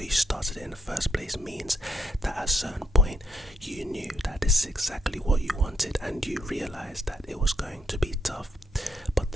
you started it in the first place means that at a certain point you knew that this is exactly what you wanted and you realized that it was going to be tough, but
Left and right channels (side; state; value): both; normal; correlation 0.74